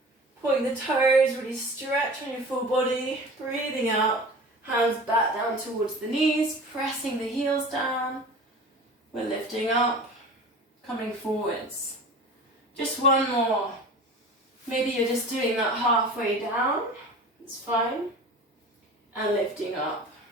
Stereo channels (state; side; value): normal; both; correlation 0.38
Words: Point the toes, really stretch on your full body. Breathing out, hands back down towards the knees, pressing the heels down. We're lifting up, coming forwards. Just one more. Maybe you're just doing that halfway down, it's fine. And lifting up.